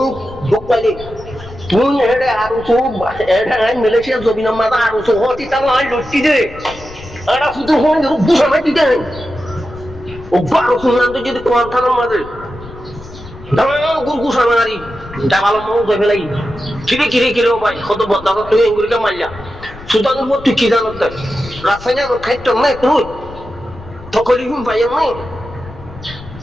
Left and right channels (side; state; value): left; noise; rumble, 17 dB below the sound